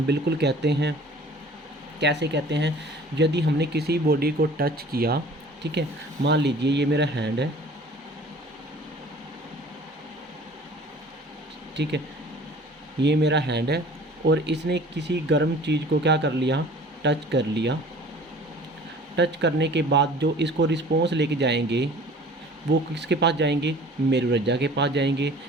बिल्कुल कहते हैं। कैसे कहते हैं, यदि हमने किसी बॉडी को टच किया, ठीक है, मान लीजिए ये मेरा हैंड है, ठीक है, ये मेरा हैंड है, और इसने किसी गर्म चीज़ को क्या कर लिया, टच कर लिया। टच करने के बाद जो इसको रिस्पॉन्स लेके जाएंगे वो किसके पास जाएंगे, मेरुरज्जा के पास जाएंगे,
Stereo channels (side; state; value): both; normal; correlation 0.47